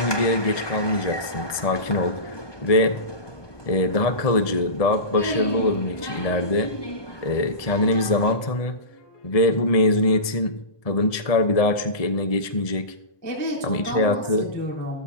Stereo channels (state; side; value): late; right; 1.7 ms